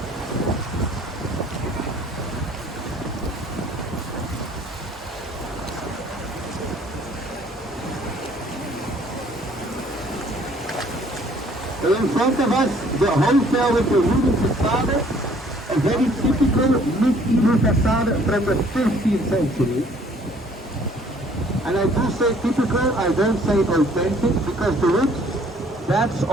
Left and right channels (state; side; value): normal; both; correlation 0.58